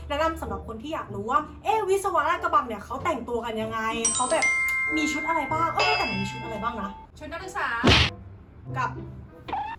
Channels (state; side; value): identical; both; correlation 1.00